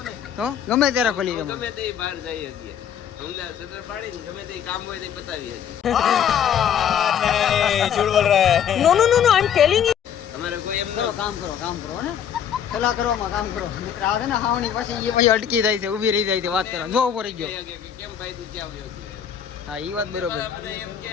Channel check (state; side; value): quieter; right; 8.8 dB